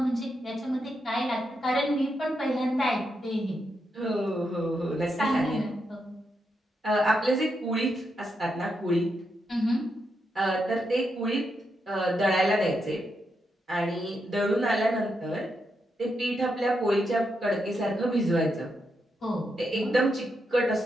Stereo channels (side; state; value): both; normal; correlation 0.83